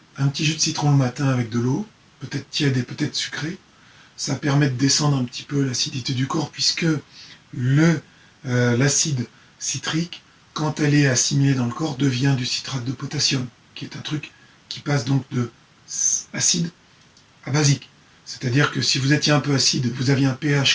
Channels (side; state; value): both; identical; correlation 1.00